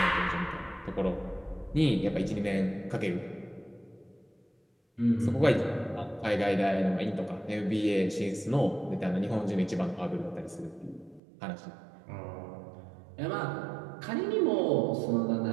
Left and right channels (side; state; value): left; drops out; at 11.2 s